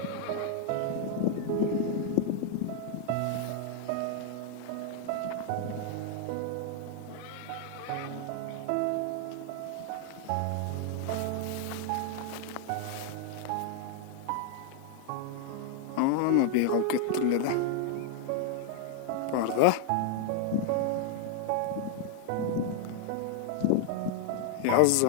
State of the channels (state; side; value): different; both; correlation 0.00